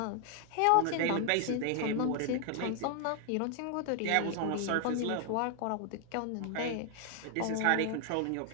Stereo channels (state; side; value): different; both; correlation 0.00